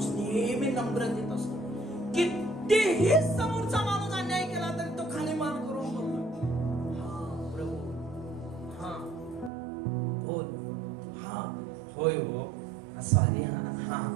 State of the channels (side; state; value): left; drops out; at 9.5 s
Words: नेहमी नम्रतेत असतो. कितीही समोरचा माणूस अन्याय केला तरी तो खाली मान करून बोलतो, हा प्रभू, हा बोल, हा होय हो सॉरी, हा